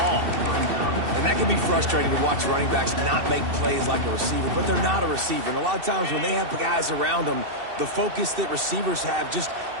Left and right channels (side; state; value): left; late; 2.7 ms